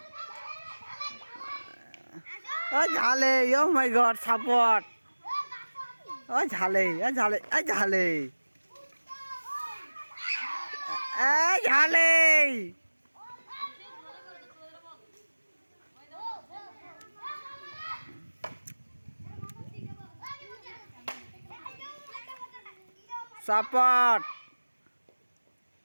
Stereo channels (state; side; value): inverted; both; correlation -1.00